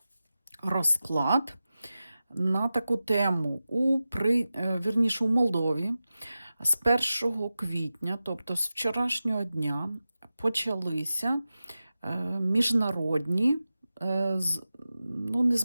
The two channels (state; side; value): inverted; both; correlation -0.94